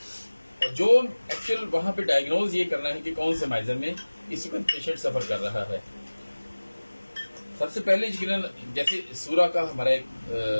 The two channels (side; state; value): both; inverted; correlation -1.00